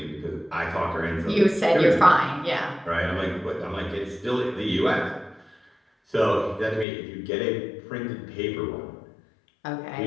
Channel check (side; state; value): right; drops out; at 6.9 s